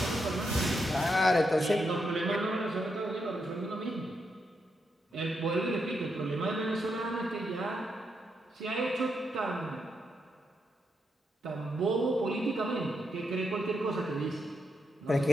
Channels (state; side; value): normal; both; correlation 0.82